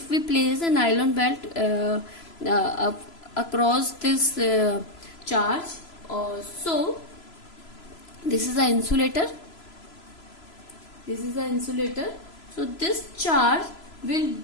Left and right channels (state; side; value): late; right; 3.0 ms